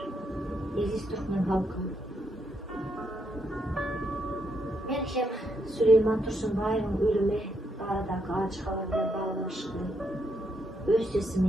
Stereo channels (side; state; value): both; normal; correlation 0.78